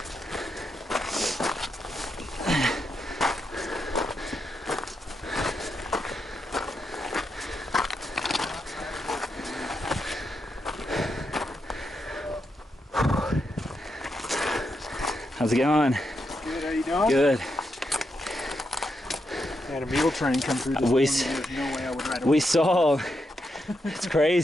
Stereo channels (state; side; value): normal; both; correlation 0.83